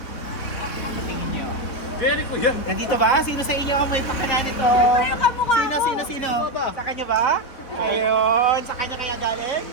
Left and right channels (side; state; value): right; late; 4.0 ms